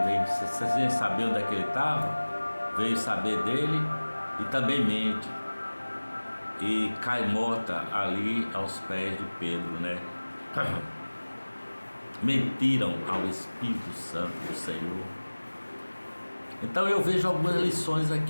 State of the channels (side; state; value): both; inverted; correlation -1.00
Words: veio. Vocês vêm saber onde é que ele estava? Veio saber dele e também mente. E cai morta ali aos pés de Pedro, né? Mentiram ao Espírito Santo do Senhor. Então eu vejo algumas lições